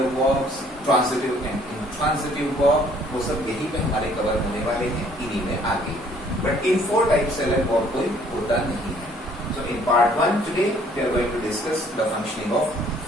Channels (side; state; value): both; normal; correlation 0.60